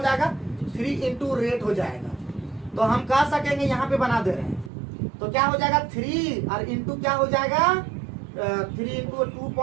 जाएगा, 3 इंटू रेट हो जाएगा। तो हम कह सकेंगे यहाँ पे बना दे रहे हैं तो क्या हो जाएगा 3 और इंटू क्या हो जाएगा 3 इंटू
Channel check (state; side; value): drops out; left; at 4.7 s